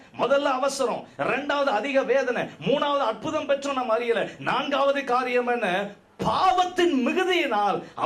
முதல்ல அவசரம், 2வது அதிக வேதனை, 3வது அற்புதம் பெற்றோம் நம்ம அறியல, 4வது காரியம் என்ன, பாவத்தின் மிகுதியினால்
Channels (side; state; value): both; identical; correlation 1.00